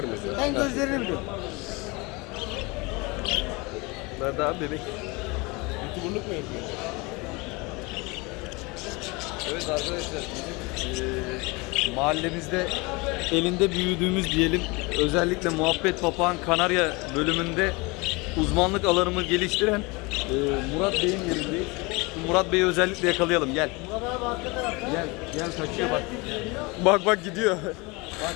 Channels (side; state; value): right; quieter; 26.2 dB